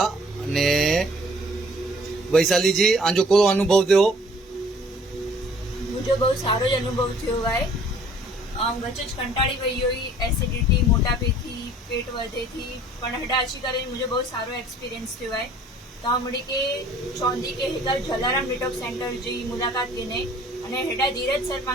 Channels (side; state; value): both; normal; correlation 0.55